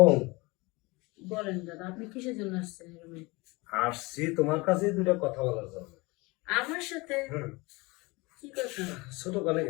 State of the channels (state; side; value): quieter; right; 24.4 dB